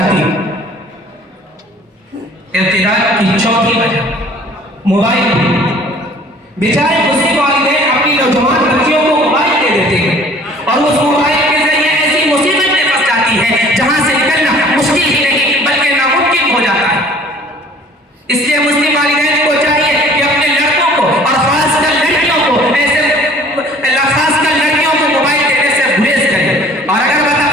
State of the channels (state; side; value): normal; both; correlation 0.51